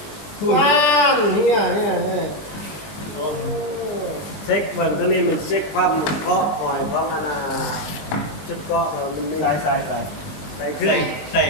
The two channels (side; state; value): right; late; 20 ms